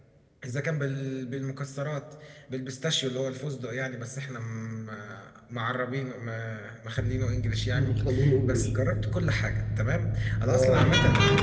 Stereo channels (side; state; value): both; identical; correlation 1.00